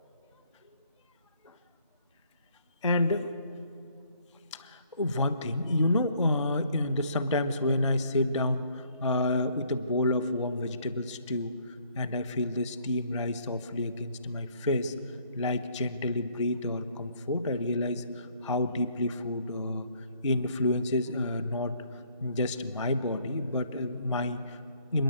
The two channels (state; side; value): inverted; both; correlation -0.64